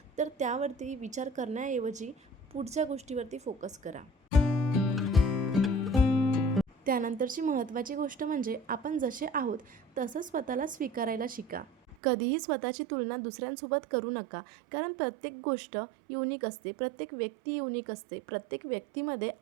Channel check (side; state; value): left; drops out; at 12.0 s